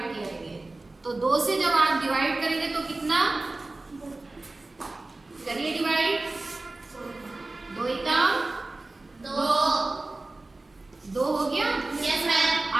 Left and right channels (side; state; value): left; quieter; 3.1 dB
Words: करेंगे। तो 2 से जब आप डिवाइड करेंगे तो कितना? करिए डिवाइड। 2 एकम 2 हो गया। Yes ma'am.